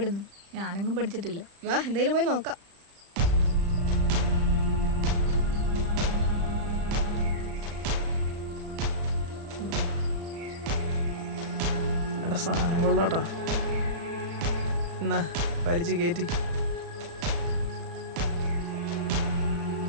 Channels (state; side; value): late; left; 35 ms